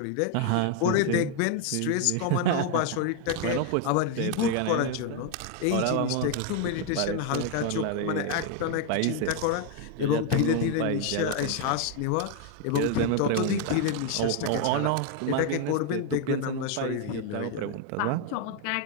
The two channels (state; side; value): different; both; correlation 0.01